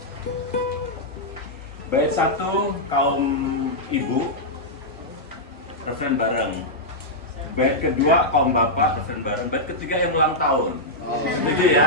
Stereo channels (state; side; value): normal; both; correlation -0.07